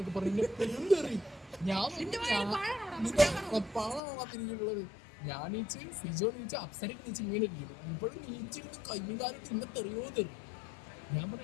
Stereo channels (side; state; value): right; drops out; at 4.0 s